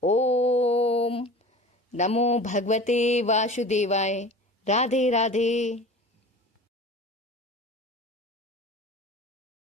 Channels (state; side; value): normal; both; correlation 0.38